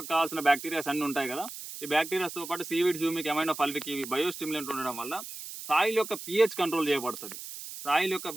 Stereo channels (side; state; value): right; noise; hiss, 10 dB below the sound